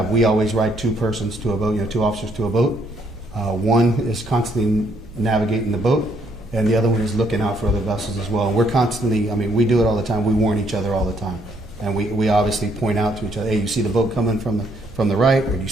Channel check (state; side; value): noise; right; rumble, 19 dB below the sound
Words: always ride two persons to a boat, two officers to a boat. One is constantly navigating the boat, and the other one is looking out for other vessels as well. And we're constantly, we do it all the time. We warn each other all the time. And we obviously point out to each other, hey, you see the boat coming from the right, or you